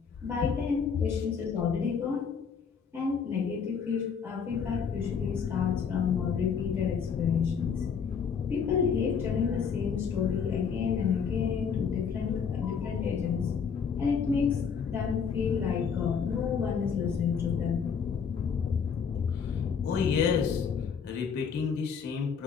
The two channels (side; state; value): right; quieter; 6.4 dB